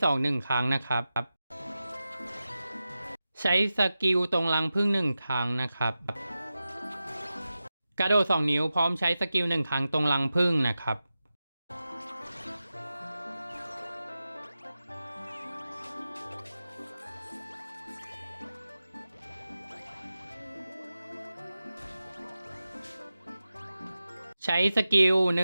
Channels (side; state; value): both; inverted; correlation -0.93